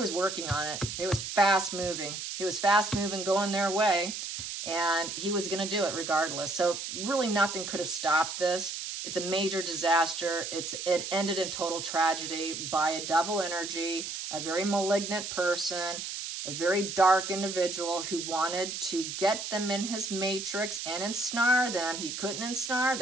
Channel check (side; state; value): right; noise; hiss, 6 dB below the sound